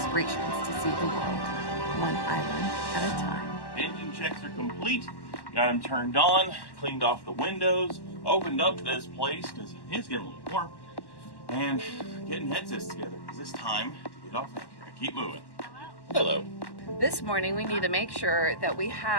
to see the world, one island at a time. Engine checks are complete. Got them turned on, cleaned off the windows, opened up this place because it is getting a little warm, and getting headsets together because it's time to get off anchor and keep moving. Hello. This morning we need to make sure that we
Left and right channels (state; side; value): late; right; 1.1 ms